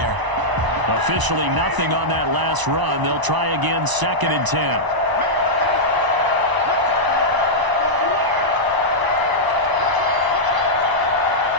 Officially nothing on that last run. They'll try again, 2nd and 10.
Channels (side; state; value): left; late; 1.0 ms